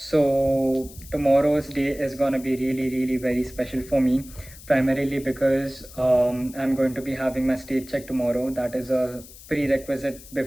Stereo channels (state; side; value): noise; left; hiss, 19 dB below the sound